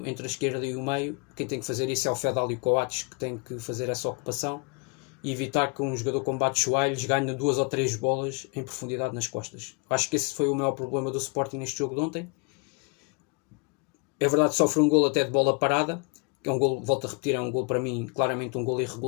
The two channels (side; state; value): right; quieter; 32.0 dB